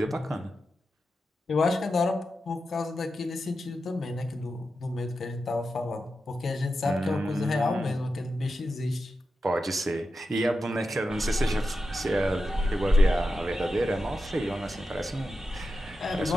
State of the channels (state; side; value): normal; both; correlation 0.90